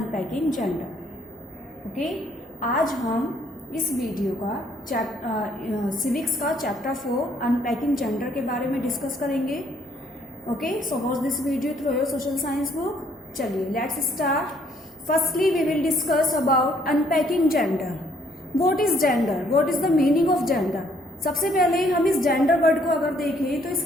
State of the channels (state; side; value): normal; both; correlation 0.65